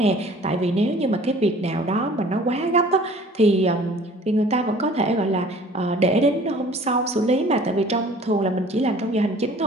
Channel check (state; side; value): normal; both; correlation 0.49